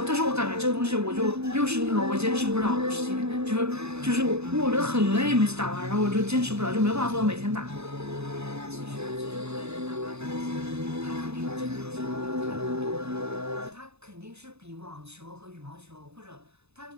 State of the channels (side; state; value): left; late; 0.80 ms